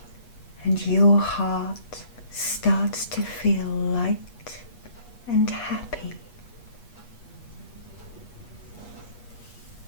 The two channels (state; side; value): late; right; 8.3 ms